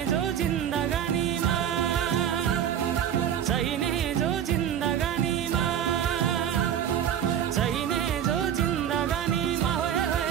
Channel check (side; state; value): left; quieter; 9.6 dB